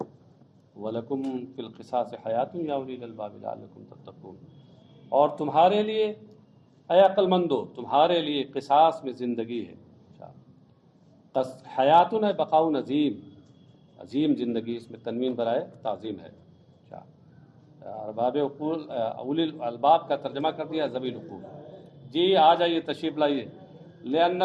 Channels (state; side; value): identical; both; correlation 1.00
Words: وَلَكُمْ فِي الْقِصَاصِ حَيَاتٌ يَا أُولِي الْأَلْبَابِ لَعَلَّكُمْ تَتَّقُونَ. اور تمہارے لیے اے عقل مندو، تمہارے لیے قصاص میں زندگی ہے. حیاتن ہے بقاء عظیم، عظیم زندگی، اس میں تنوین برائے تعظیم ہے. ارباب عقول، اولی الالباب کا ترجمہ کر دیا ذوی العقول. جی آ جائیے، تشریف لائیے. لأن